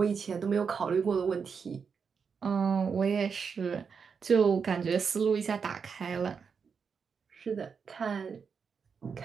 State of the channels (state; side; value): quieter; left; 6.0 dB